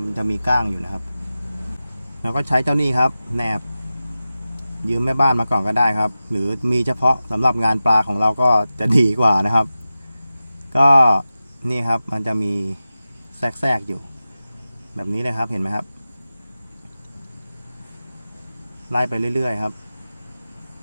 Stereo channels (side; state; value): both; inverted; correlation -0.94